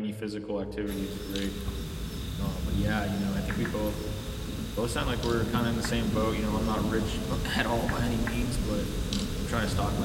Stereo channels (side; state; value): both; identical; correlation 1.00